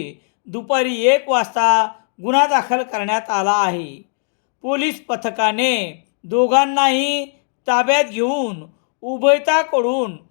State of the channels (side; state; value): right; silent; 56 dB below the other